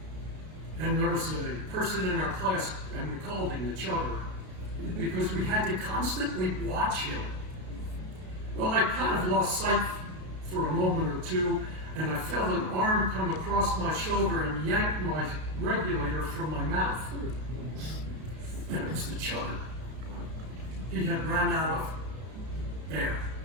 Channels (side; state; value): left; late; 32 ms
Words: and there was a person in our class, and we called him the chugger, because we had to constantly watch him. Well, I kind of lost sight for a moment or two, and I felt an arm come across my shoulder and yank my regulator from my mouth. And it was the chugger. He had run out of air.